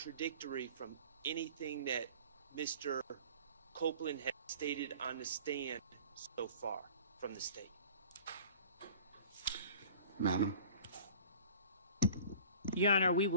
from anything that Mr. Copeland has stated on the stand so far from the state. Madam. Your Honor, we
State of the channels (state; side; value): inverted; both; correlation -0.45